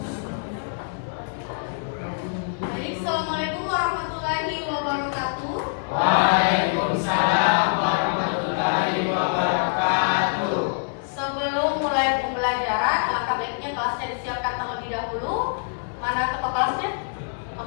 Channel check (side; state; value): right; silent; digital silence